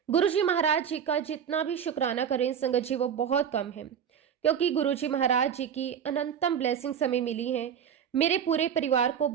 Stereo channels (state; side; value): quieter; left; 8.2 dB